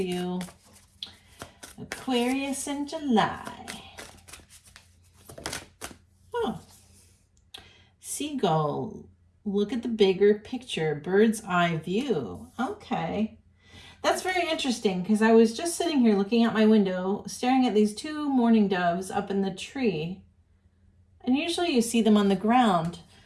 Aquarius in July. Oh. Seagull. Look at the bigger picture. Bird's eye view. Okay. That's very interesting because I was just sitting here looking out my window, staring at these two mourning doves up in the tree. And usually you see them on the ground.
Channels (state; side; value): identical; both; correlation 1.00